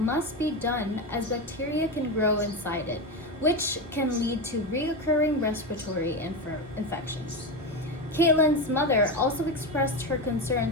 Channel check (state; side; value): normal; both; correlation 0.16